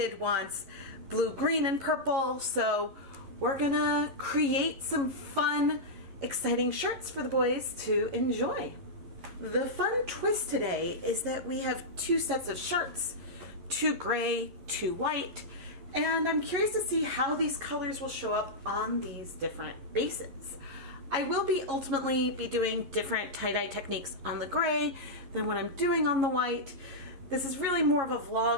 wants blue, green, and purple, so we're gonna create some fun, exciting shirts for the boys to enjoy. The fun twist today is that we have two sets of shirts, two gray, two white, and I'm curious to see how these colors will show up on these different bases. I will ultimately be doing different tie-dye techniques on the gray than what I'm doing on the white. This is really more of a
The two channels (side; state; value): left; late; 11 ms